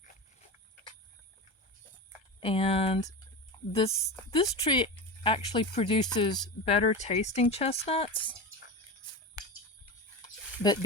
And this tree actually produces better tasting chestnuts, but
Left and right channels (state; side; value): late; right; 1.3 ms